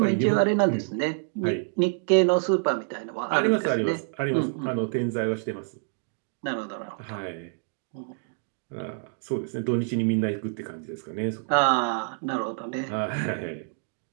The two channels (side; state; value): left; silent; digital silence